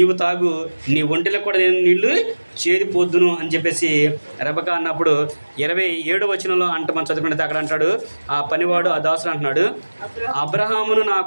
తాగు, నీ ఒంటిలో కూడా నేను నీళ్లు చేదిపోద్దును అని చెప్పేసి రెబకా అన్నప్పుడు 27వ వచనంలో మనం చదువుకుంటే అక్కడ అంటాడు, ఆ పనివాడు ఆ దాసుడు అంటున్నాడు,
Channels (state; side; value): inverted; both; correlation -1.00